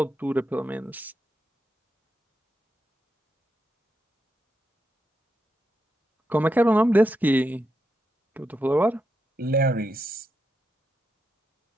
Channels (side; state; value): both; normal; correlation 0.84